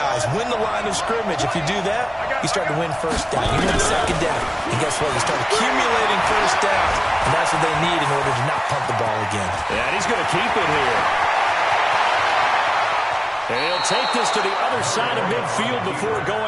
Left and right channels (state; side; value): identical; both; correlation 1.00